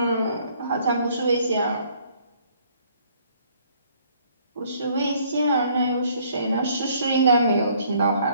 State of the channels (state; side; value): inverted; both; correlation -0.62